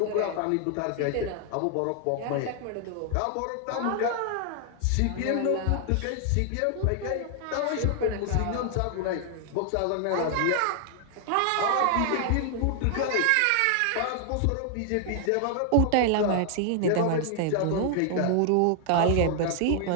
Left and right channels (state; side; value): different; both; correlation 0.00